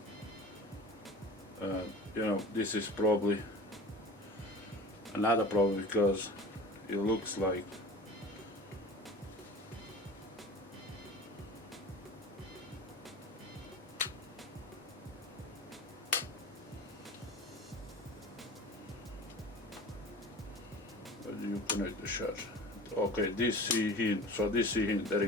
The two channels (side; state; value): both; normal; correlation 0.38